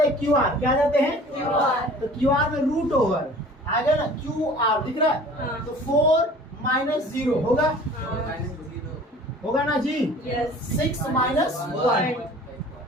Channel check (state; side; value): normal; both; correlation 0.46